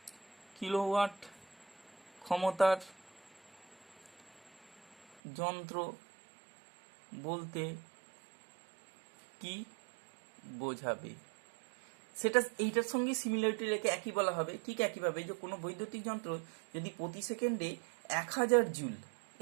ক্ষমতার যন্ত্র বলতে কি বোঝাবে সেটা এইটার সঙ্গে সিমিলারিটি রেখে একই বলা হবে। ঠিক একইভাবে যে কোনো বৈদ্যুতিক যন্ত্র যদি প্রতি সেকেন্ডে 1000 জুল,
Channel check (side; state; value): left; drops out; at 5.2 s